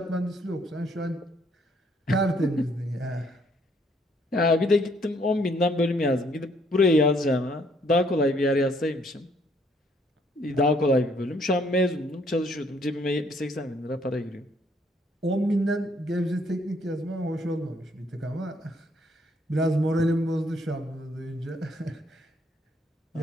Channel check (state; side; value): normal; both; correlation 0.67